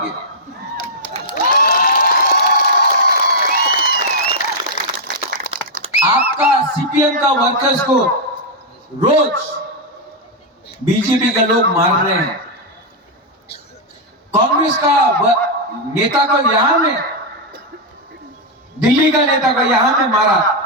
आपका सीपीएम का वर्कर्स को रोज बीजेपी के लोग मार रहे हैं। कांग्रेस का नेता को यहां में, दिल्ली का नेता को यहां में मारा।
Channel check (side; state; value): both; normal; correlation -0.02